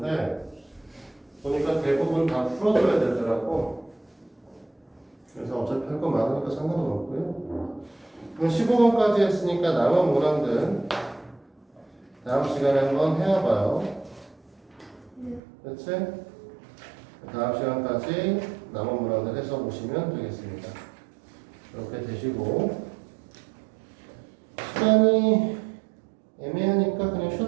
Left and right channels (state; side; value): drops out; left; at 15.4 s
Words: 보니까 대부분 다 풀어줘야 되더라고. 그래서 어차피 할 거 많으니까 상관은 없고요. 그럼 15번까지 했으니까 남은 문항들 다음 시간에 한번 해와봐요. 그렇지? 다음 시간까지 남은 문항들 해서 보시면 되겠습니다. 이렇게 되시고 시간이 애매하니까 그냥